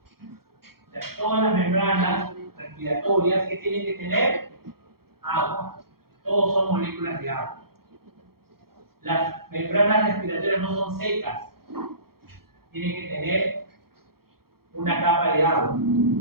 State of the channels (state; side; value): late; left; 0.94 ms